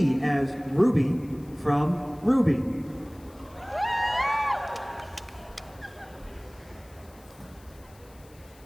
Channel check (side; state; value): left; noise; hiss, 27 dB below the sound